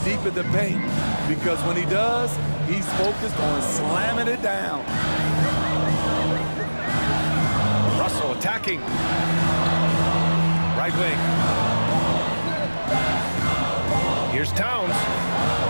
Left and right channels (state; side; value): inverted; both; correlation -1.00